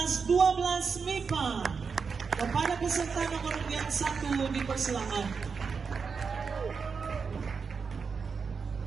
12 MIPA. Kepada peserta nomor yang 1 dipersilakan.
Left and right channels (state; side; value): quieter; left; 5.5 dB